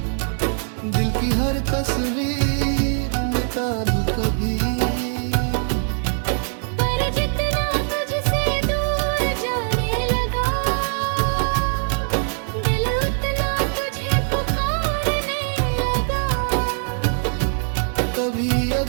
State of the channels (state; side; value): silent; left; digital silence